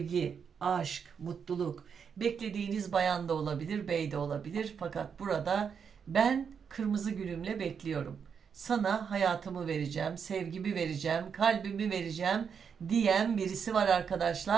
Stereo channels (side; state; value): left; quieter; 6.8 dB